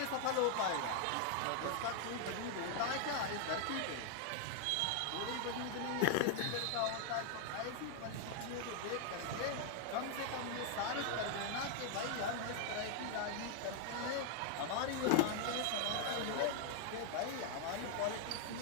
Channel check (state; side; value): different; both; correlation 0.00